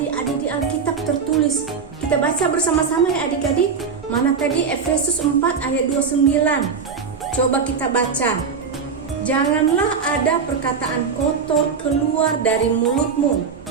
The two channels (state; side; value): quieter; left; 5.8 dB